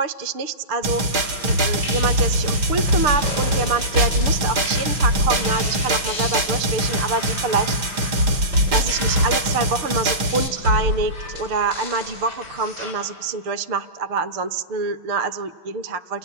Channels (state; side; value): late; left; 6.3 ms